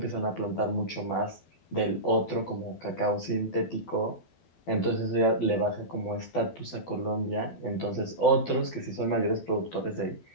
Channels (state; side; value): late; right; 12 ms